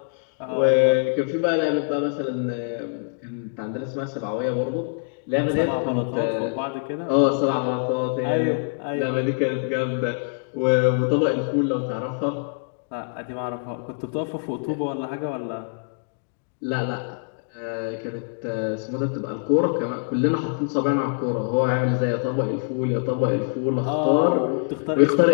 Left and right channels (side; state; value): right; silent; digital silence